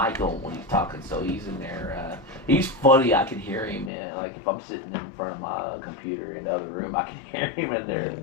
on when he's talking, so he's in there. He's funny. I can hear him like if I'm sitting in front of my computer in the other room, I can hear him in there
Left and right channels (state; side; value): drops out; right; at 3.9 s